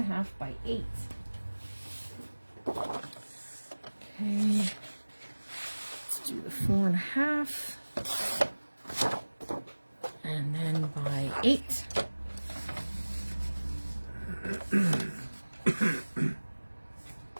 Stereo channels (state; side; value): inverted; both; correlation -1.00